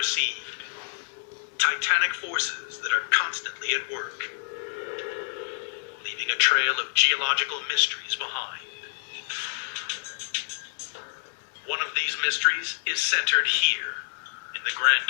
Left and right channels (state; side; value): silent; right; 60 dB below the other